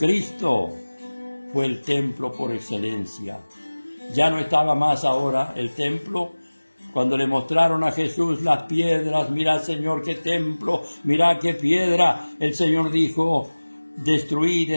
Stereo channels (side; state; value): both; inverted; correlation -1.00